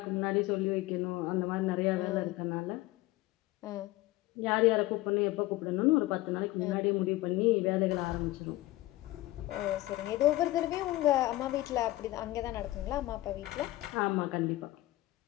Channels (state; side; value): quieter; right; 17.6 dB